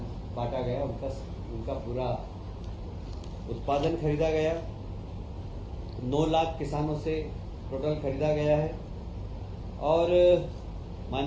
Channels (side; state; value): both; identical; correlation 1.00